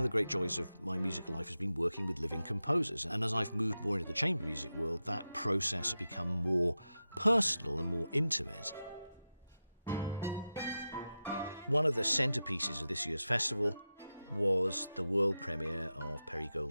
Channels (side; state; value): both; inverted; correlation -0.92